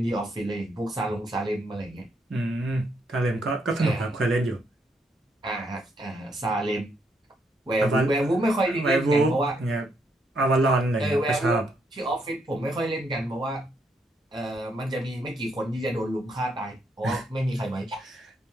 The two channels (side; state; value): both; normal; correlation 0.75